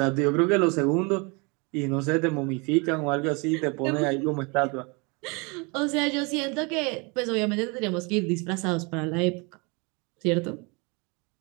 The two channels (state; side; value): quieter; left; 30.2 dB